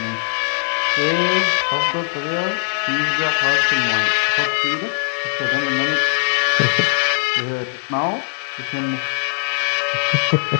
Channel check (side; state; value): right; silent; digital silence